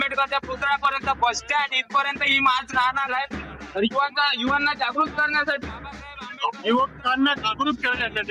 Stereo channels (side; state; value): both; identical; correlation 1.00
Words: पुतळ्यापर्यंत बस स्टँड इथपर्यंत ही मार्च राहणार आहे. तर युवांना जागृत करण्यासाठी युवकांना जागृत